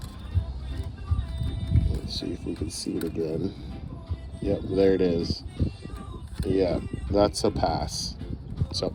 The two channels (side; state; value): both; identical; correlation 1.00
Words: Let's see if we can see it again. Yep, there it is. Yeah, that's a pass. So